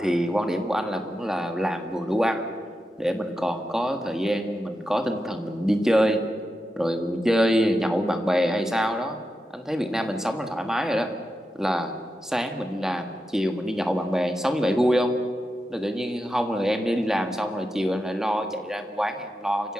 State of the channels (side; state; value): both; normal; correlation 0.88